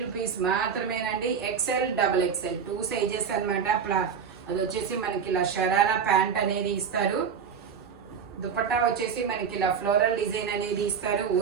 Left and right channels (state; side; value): quieter; left; 6.8 dB